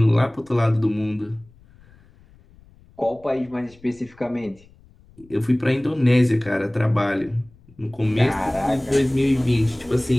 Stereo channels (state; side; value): noise; left; rumble, 27 dB below the sound